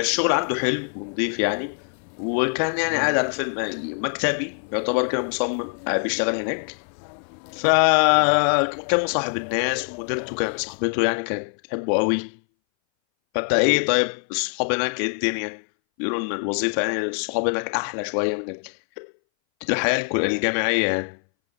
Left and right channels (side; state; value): right; silent; 61 dB below the other